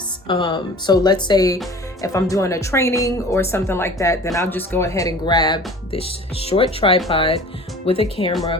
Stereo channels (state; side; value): normal; both; correlation 0.43